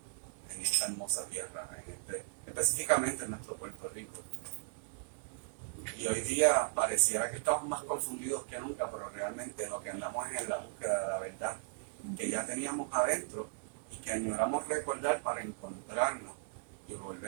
en esta hermosa tierra, específicamente en nuestro Puerto Rico. Y hoy día pareciera que estamos más confundidos que nunca, pero realmente lo que andamos es en la búsqueda de la verdad que ya teníamos adentro y que añoramos recordar para encontrarnos y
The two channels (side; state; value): left; silent; digital silence